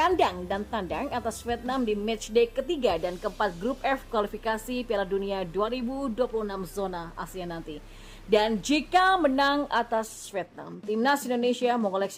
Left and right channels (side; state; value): both; identical; correlation 1.00